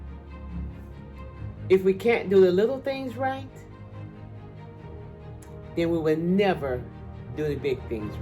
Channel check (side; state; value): both; identical; correlation 1.00